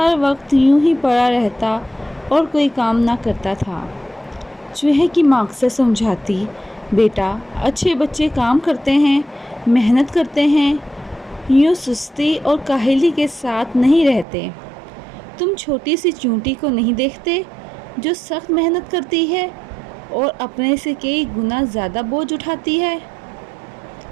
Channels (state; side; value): drops out; left; at 14.2 s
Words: وقت یوں ہی پڑا رہتا اور کوئی کام نہ کرتا تھا۔ چوہے کی ماں اکثر سمجھاتی، بیٹا، اچھے بچے کام کرتے ہیں، محنت کرتے ہیں، یوں سستی اور کاہلی کے ساتھ نہیں رہتے۔ تم چھوٹی سی چیونٹی کو نہیں دیکھتے جو سخت محنت کرتی ہے اور اپنے سے کئی گنا زیادہ بوجھ اٹھاتی ہے؟